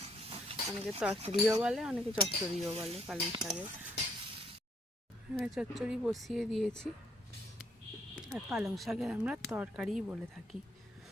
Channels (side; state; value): both; normal; correlation 0.70